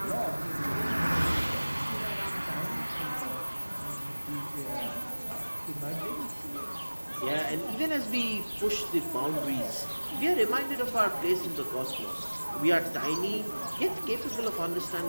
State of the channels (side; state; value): both; inverted; correlation -1.00